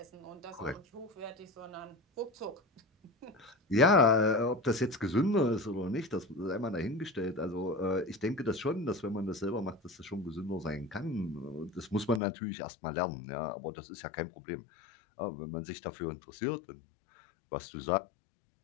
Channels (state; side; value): drops out; right; at 12.2 s